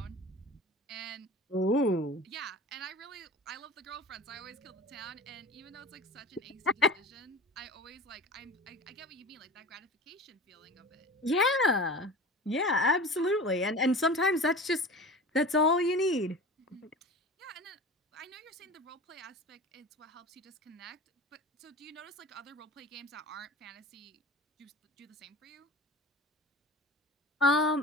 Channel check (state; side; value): normal; both; correlation 0.36